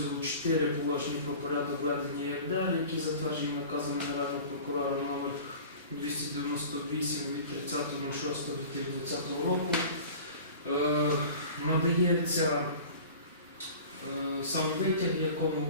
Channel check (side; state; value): both; inverted; correlation -0.40